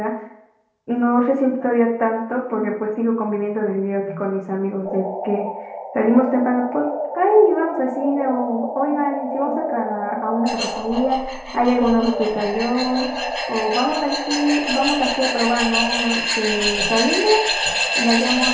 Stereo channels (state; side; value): identical; both; correlation 1.00